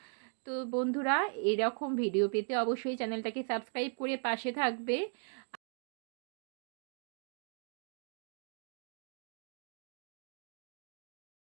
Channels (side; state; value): left; silent; 52 dB below the other